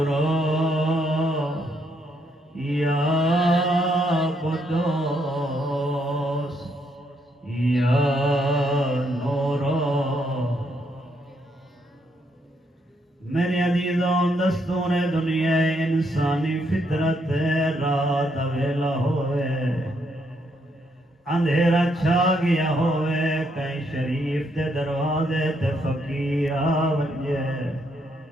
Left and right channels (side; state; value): both; normal; correlation 0.75